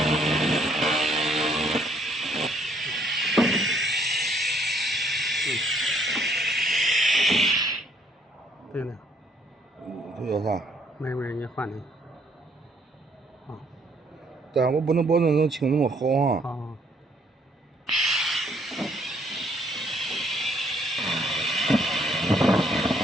对了。这叫啥？没，你换的。啊。但我不能保证能清那么好啊。啊。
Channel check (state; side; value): normal; both; correlation 0.67